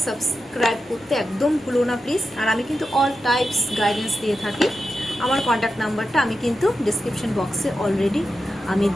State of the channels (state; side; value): normal; both; correlation 0.90